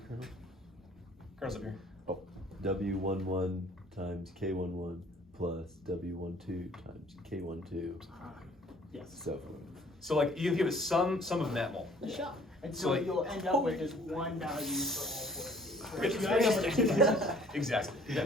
kernel? Kernel's up here. Oh, W11 times K11 plus W12 times K12. Yes. So like you can give it some of netmul. And So, so like- you'll end up with just one value for all 4 of these. Exactly. Yeah.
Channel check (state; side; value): normal; both; correlation 0.56